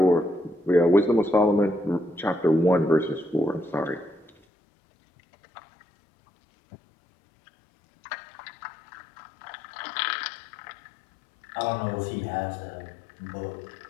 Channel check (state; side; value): drops out; right; at 4.4 s